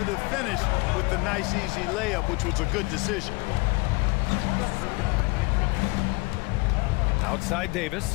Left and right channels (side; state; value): right; quieter; 26.3 dB